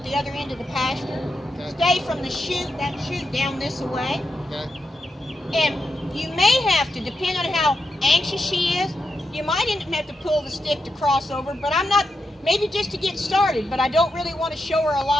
the other end of the pasture. Okay. Stay from the chute, that chute down this way. Okay. And you may have to, depending on how anxious she is, you might even have to pull the stick to cross over, but I'm not, maybe just to get started, but I don't really want to show her a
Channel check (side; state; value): both; normal; correlation 0.86